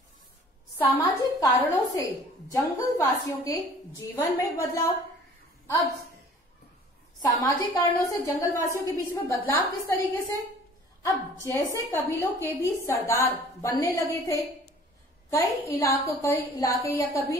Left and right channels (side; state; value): both; normal; correlation 0.50